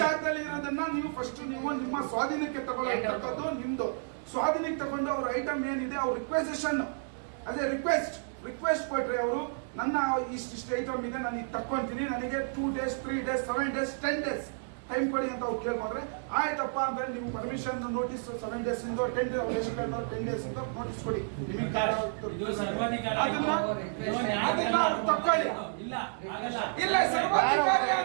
ಜಾಗದಲ್ಲಿ ಇರೋದನ್ನ ನೀವು ಫಸ್ಟ್ ನೀವು ನಿಮ್ಮ ಸ್ವಾಧೀನಕ್ಕೆ ತಗೊಳ್ಳೋದು ನಿಮ್ದು. ಸ್ವಾಧೀನಕ್ಕೆ ತಗೊಂಡು ಅವ್ರ ಐಟಮ್ ಏನಿದೆ ಅವ್ರ ರಿಕ್ವೆಸಿಷನ್ ಅದೇ ರಿಕ್ವೆಸ್ಟ್ ಕೊಟ್ರೆ ಅವರು ನನ್ನ ಇಷ್ಟು ಐಟಮ್ ಇದೆ ನಾನು ಈಗ ತಕ್ಕೊಂತೀನಿ, ನನಗೆ 2 days 3 days 7 days 10 days time ಕೊಡಿ ಅಂತ ಅವ್ರು ಕೇಳ್ಕೊಂಡ್ರೆ ಆಯ್ತಪ್ಪ ಅಂದ್ರೆ ನೀವು ಪರ್ಮಿಷನ್ ನೋಟಿಸ್ 7 days ಇಂದ 10 days 10 days ಇಂದ ನೋಟಿಸ್ ಕೊಡಿ, ನಿಮಗೆ ಅದನ್ನ ತಕ್ಕೊಳ್ಳಿ. ಇಲ್ಲ ಸರ್ವಾಧಿಕಾರಿ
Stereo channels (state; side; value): silent; left; digital silence